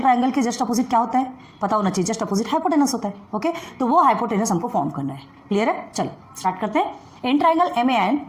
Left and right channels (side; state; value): both; identical; correlation 1.00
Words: triangle के जस्ट अपोजिट क्या होता है पता होना चाहिए, जस्ट अपोजिट हाइपोटेनस होता है। ओके, तो वो हाइपोटेनस हमको फॉर्म करना है। क्लियर है? चलो स्टार्ट करते हैं। इन ट्राइंगल MAN,